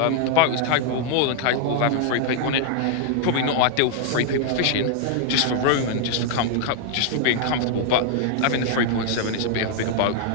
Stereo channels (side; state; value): both; different; correlation 0.00